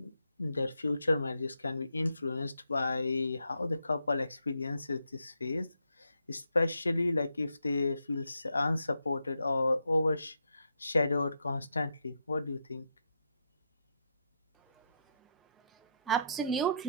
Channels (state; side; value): inverted; both; correlation -0.78